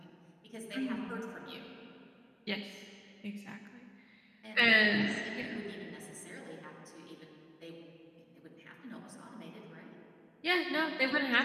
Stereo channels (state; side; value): identical; both; correlation 1.00